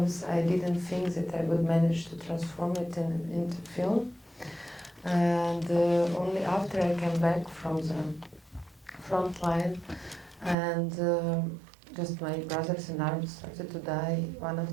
I didn't think that I would manage to transform it into film. And only after I came back from the front line, and just my brothers in arms started to die one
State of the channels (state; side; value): drops out; left; at 10.6 s